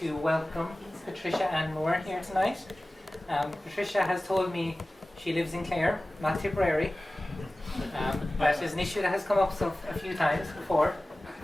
welcome Patricia Ann Moore here tonight. Patricia has told me she lives in Clare, not Tipperary. That is an issue that has come up a few times before.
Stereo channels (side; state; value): both; normal; correlation 0.97